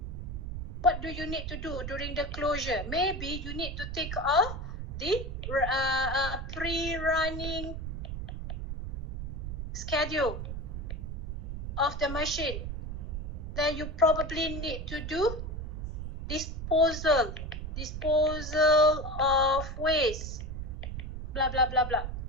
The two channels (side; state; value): right; noise; rumble, 5 dB below the sound